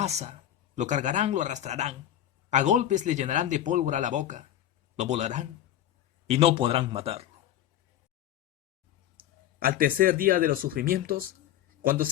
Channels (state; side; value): quieter; right; 11.8 dB